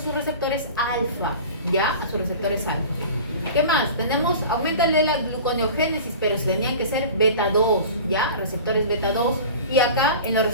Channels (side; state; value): both; inverted; correlation -0.38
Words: receptores alfa, ¿ya? A sus receptores alfa. ¿Qué más? Tenemos, aumenta la gluconeogénesis, pero tenían que ser beta 2, ¿ya? Receptores beta 2. Y acá, en los